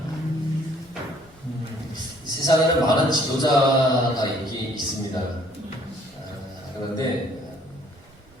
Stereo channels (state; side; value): normal; both; correlation 0.60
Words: 세상에는 많은 지도자가 있습니다. 그런데